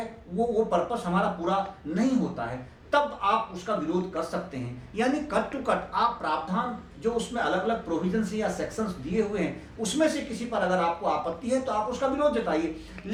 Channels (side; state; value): both; identical; correlation 1.00